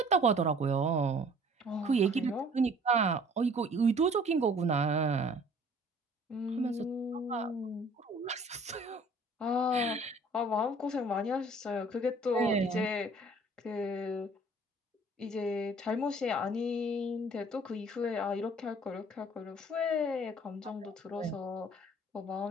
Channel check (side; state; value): both; normal; correlation 0.53